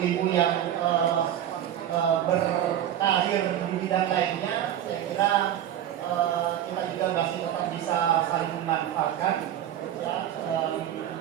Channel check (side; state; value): left; quieter; 11.0 dB